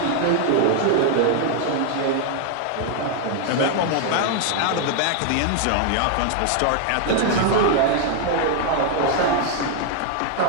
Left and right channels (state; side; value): different; both; correlation 0.00